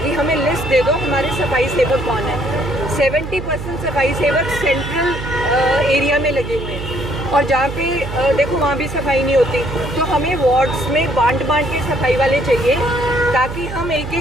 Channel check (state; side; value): noise; right; hum, 8 dB below the sound